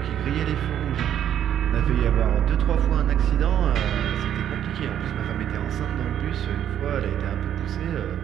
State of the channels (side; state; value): left; quieter; 10.2 dB